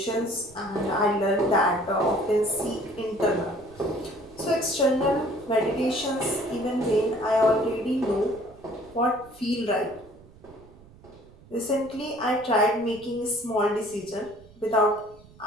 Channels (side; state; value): right; noise; rumble, 24 dB below the sound